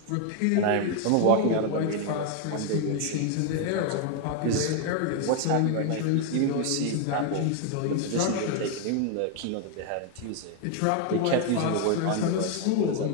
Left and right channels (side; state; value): both; different; correlation 0.01